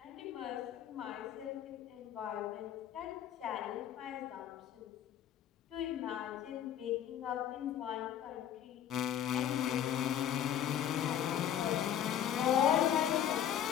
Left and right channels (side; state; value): right; quieter; 10.2 dB